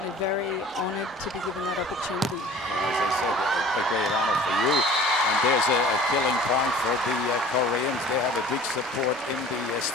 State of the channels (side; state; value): both; normal; correlation 0.46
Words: very honoured to be given that opportunity. Well, as I said, a great honour for you. And there's a killing point for the Koreans. They have a big support in the